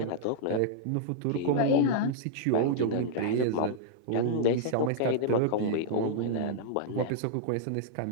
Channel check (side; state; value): both; different; correlation -0.02